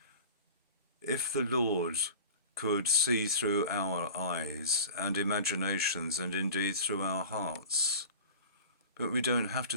If the Lord could see through our eyes and imaginations and indeed through our hearts. But we don't have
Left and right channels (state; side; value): inverted; both; correlation -0.38